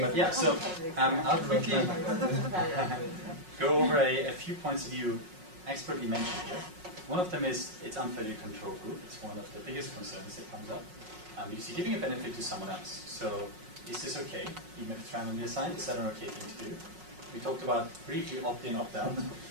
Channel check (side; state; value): left; late; 5.5 ms